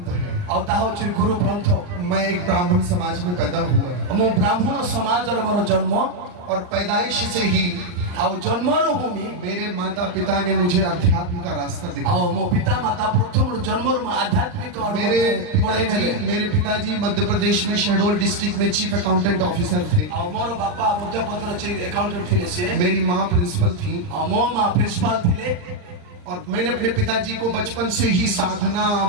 है। ଆଉ ତାହା ହେଉଛି ଗୁରୁ ଗ୍ରନ୍ଥ। मैं एक ब्राह्मण समाज में पैदा हुआ ମୁଁ ବ୍ରାହ୍ମଣ ସମାଜରେ ମୋର ଜନ୍ମ और पैदाइश से ही ଆଉ ଜନ୍ମରୁ ହିଁ मेरे माता पिता ने मुझे अध्यात्म का रास्ता दिखाया। ଆଉ ମୋ ପିତା ମାତା ପ୍ରଥମରୁ ଜନ୍ମରୁ ମୁଁ ଆଧ୍ୟାତ୍ମିକ मेरे पिताजी मध्य प्रदेश में शहडोल डिस्ट्रिक्ट में चीफ अकाउंटेंट ऑफिसर थे। ଆଉ ମୋର ବାପା ମଧ୍ୟପ୍ରଦେଶରେ ଆକାଉଣ୍ଟାଣ୍ଟ ଥିଲେ ସିଏ मेरी माँ प्रिंसिपल थी ଆଉ ମୋ ମା ପ୍ରିନ୍ସିପାଲ ଥିଲେ। और मैंने अपने पिताजी को बचपन से ही साधना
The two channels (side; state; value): left; late; 39 ms